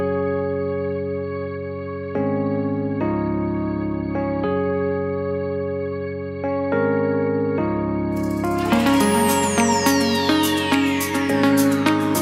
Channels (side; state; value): both; identical; correlation 1.00